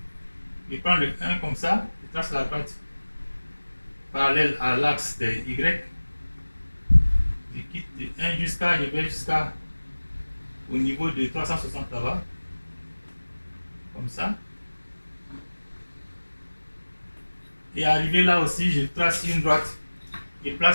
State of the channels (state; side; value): inverted; both; correlation -1.00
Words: je prends le 1 comme ça, je trace la droite parallèle à l'axe de y. Je quitte de 1 je vais jusqu'à au niveau de 360 là-bas. Comme ça. Et arrivé là aussi, je trace une droite. Je